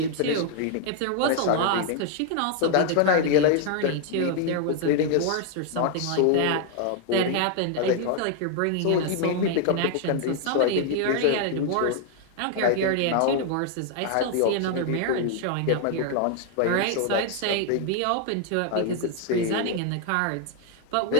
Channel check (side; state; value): both; different; correlation 0.00